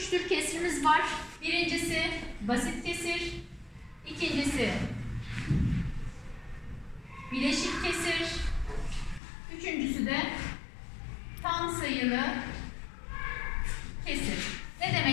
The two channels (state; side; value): drops out; right; at 9.2 s